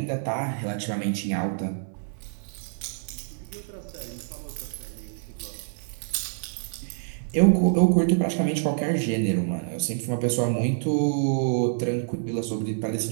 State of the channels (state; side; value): silent; left; 57 dB below the other